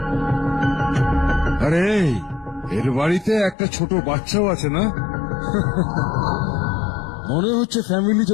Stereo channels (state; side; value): drops out; right; at 3.6 s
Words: আরে এর বাড়িতে একটা ছোট বাচ্চাও আছে না মনে হচ্ছে ফ্যামিলি